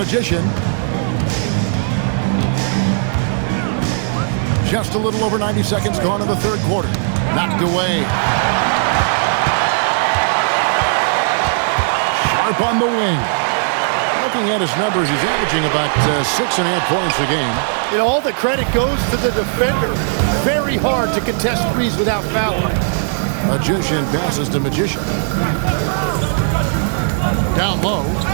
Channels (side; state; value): left; silent; digital silence